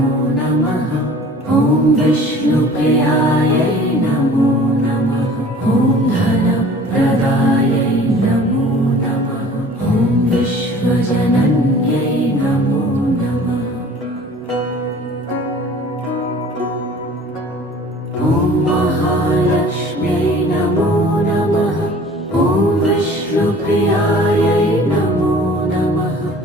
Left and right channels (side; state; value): both; normal; correlation 0.47